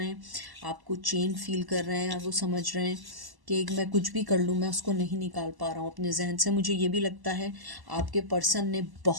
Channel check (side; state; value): left; late; 1.0 ms